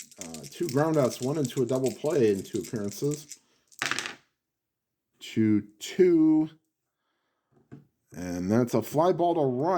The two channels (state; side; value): identical; both; correlation 1.00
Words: groundouts, 1 into a double play in 2 appearances. 2-2. And that's a fly ball to